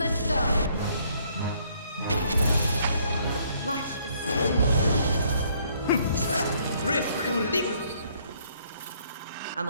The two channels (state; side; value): inverted; both; correlation -0.66